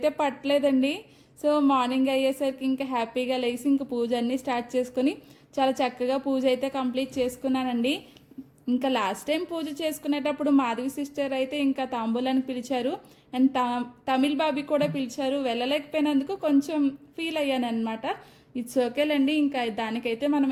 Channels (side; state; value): both; identical; correlation 1.00